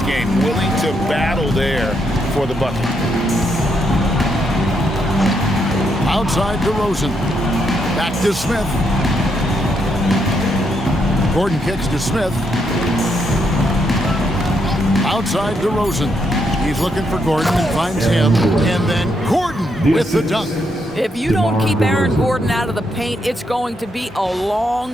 game, willing to battle there for the bucket. Outside DeRozan. Back to Smith. Gordon kicks to Smith. Outside DeRozan. He's looking for Gordon and finds him. And then Gordon with the dunk. If you don't keep Aaron Gordon out of the paint, it's going to be a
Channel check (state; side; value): normal; both; correlation 0.78